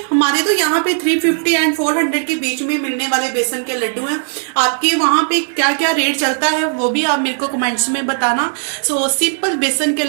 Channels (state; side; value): silent; left; digital silence